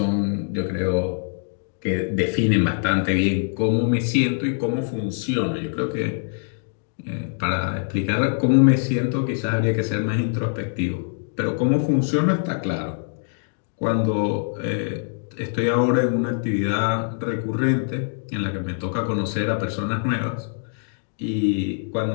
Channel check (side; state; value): right; silent; digital silence